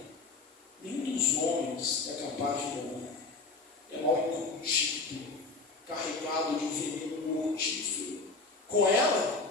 nenhum dos homens é capaz de domar. É mal incontido, carregado de veneno mortífero. Com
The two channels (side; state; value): right; quieter; 3.8 dB